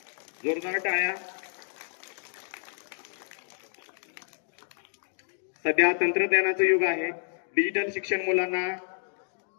जोरदार टाळ्या। सध्या तंत्रज्ञानाचं युग आहे, डिजिटल शिक्षण मुलांना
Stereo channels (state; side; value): silent; right; digital silence